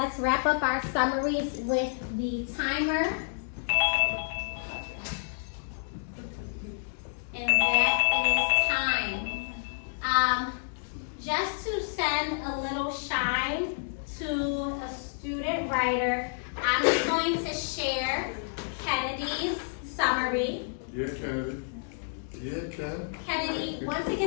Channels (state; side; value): silent; right; digital silence